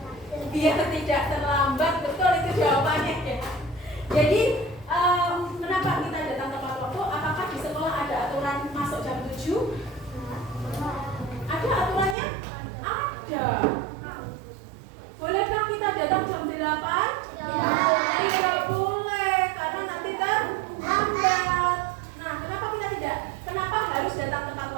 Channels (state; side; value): drops out; left; at 12.2 s